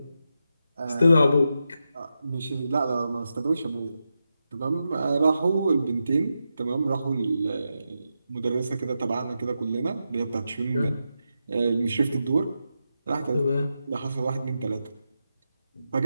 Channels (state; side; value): inverted; both; correlation -0.88